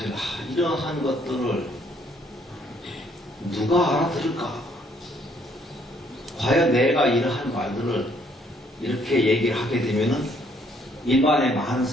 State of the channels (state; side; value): normal; both; correlation 0.66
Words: 이러한 것들을 누가 알아들을까? 과연 내가 이러한 말들을 이렇게 얘기를 하게 되면은 일반의 많은